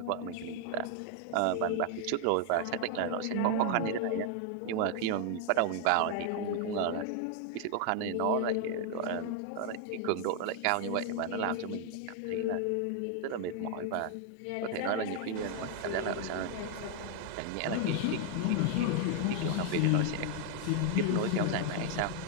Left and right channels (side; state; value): both; different; correlation 0.00